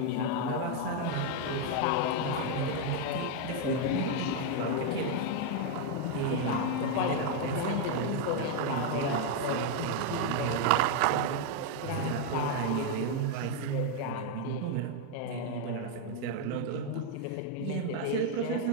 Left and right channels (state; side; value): different; both; correlation 0.01